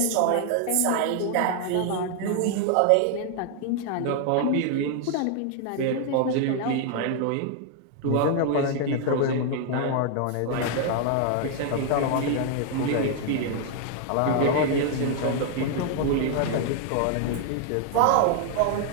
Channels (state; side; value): different; both; correlation 0.00